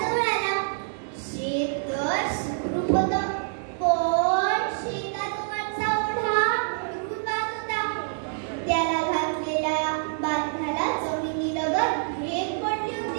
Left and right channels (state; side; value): silent; left; 61 dB below the other